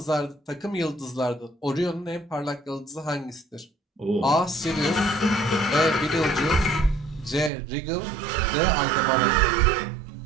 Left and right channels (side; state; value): left; drops out; at 7.5 s